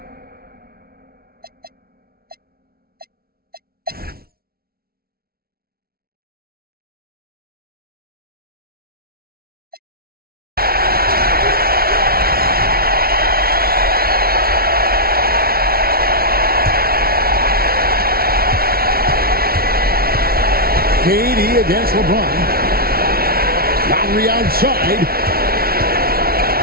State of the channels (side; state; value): left; late; 0.44 ms